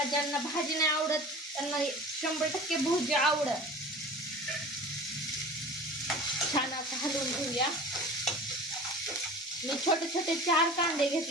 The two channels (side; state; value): both; normal; correlation 0.38